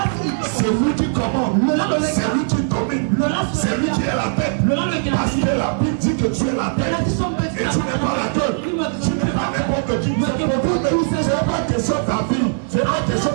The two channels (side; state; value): left; silent; digital silence